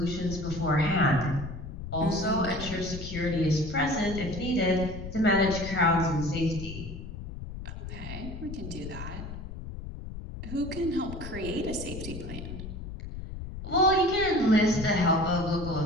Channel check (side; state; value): left; noise; rumble, 9 dB below the sound